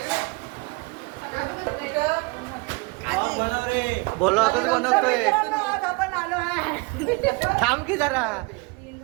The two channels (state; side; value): quieter; left; 27.5 dB